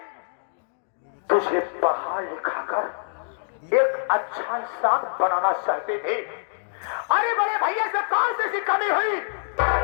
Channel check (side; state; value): right; silent; digital silence